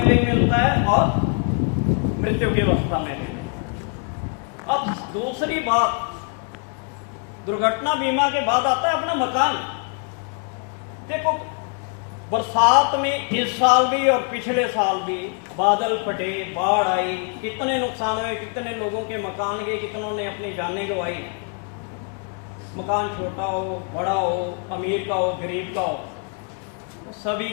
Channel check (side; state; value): right; quieter; 39.0 dB